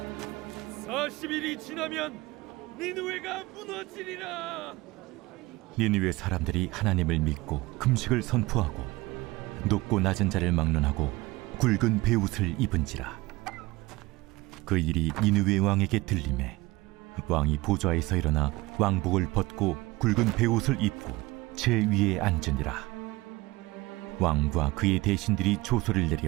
40일이 지나면 니느웨가 무너지리라. 니느웨 사람들이 하나님을 믿고 금식을 선포하고 높고 낮은 자를 막론하고 굵은 베옷을 입은지라. 그 일이 니느웨 왕에게 들리매 왕이 보좌에서 일어나 왕복을 벗고 굵은 베옷을 입고 제 위에 앉으니라. 왕과 그의 대신들이 조소를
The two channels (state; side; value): quieter; left; 20.7 dB